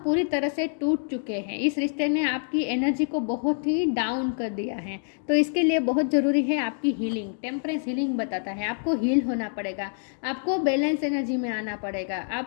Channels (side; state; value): right; silent; digital silence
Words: पूरी तरह से टूट चुके हैं। इस रिश्ते ने आपकी एनर्जी को बहुत ही डाउन कर दिया है। तो इसके लिए बहुत ज़रूरी है आपकी हीलिंग। टेम्परेंस हीलिंग बताता है आपको हील होना पड़ेगा, आपको बैलेंस एनर्जी में आना पड़ेगा,